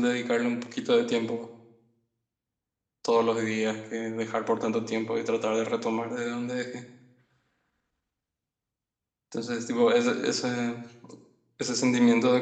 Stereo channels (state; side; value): identical; both; correlation 1.00